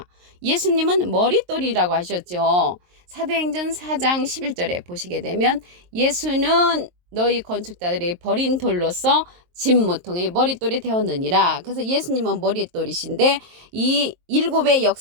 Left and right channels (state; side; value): late; left; 23 ms